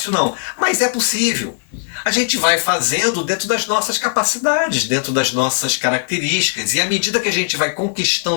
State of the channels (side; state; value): right; silent; 67 dB below the other